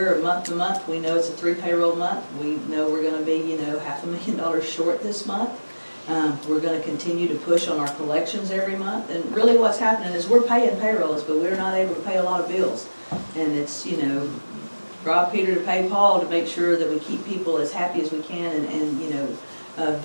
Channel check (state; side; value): inverted; both; correlation -1.00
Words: month to month. We know it's a 3 payroll month. We know we're going to be, $500,000 short this month. We're going to continue to push on our collections every month. And really what's happening is we're paying payrolls, but we're not able to pay a lot of bills. And it's, rob Peter to pay Paul to make sure that we keep people as happy as we can, and